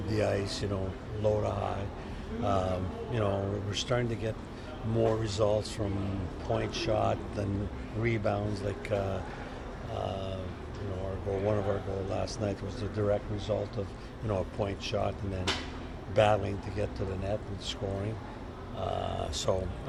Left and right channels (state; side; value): identical; both; correlation 1.00